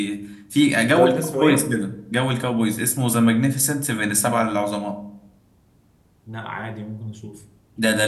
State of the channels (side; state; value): both; identical; correlation 1.00